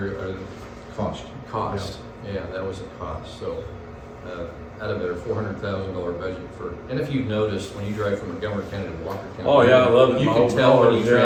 Cost. cost. Yeah, that was a cost. So, out of their $400,000 budget for, and if you've noticed, when you drive from Montgomery County to Walker County. Oh, yeah, I love it. You My can old tell when cars, you yeah.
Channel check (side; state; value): both; identical; correlation 1.00